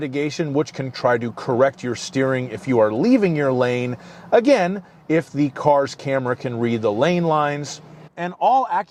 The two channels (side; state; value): both; identical; correlation 1.00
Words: which can try to correct your steering if you are leaving your lane, again, if the car's camera can read the lane lines. And all